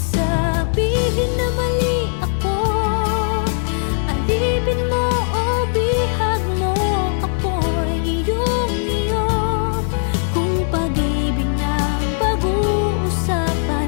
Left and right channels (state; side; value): silent; right; digital silence